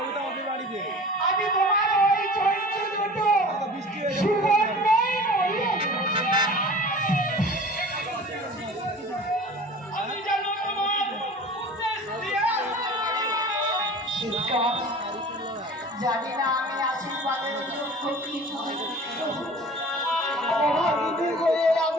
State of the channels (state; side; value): normal; both; correlation 0.41